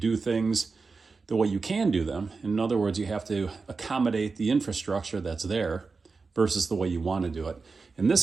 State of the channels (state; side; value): quieter; left; 4.4 dB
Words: things the way you can do them. In other words, you have to accommodate the infrastructure that's there versus the way you want to do it. In this